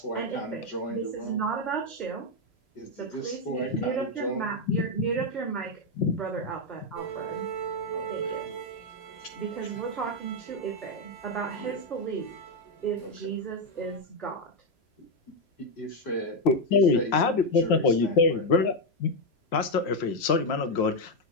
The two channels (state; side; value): late; right; 3.0 ms